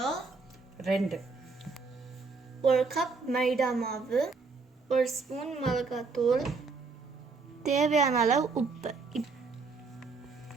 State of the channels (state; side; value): quieter; left; 4.3 dB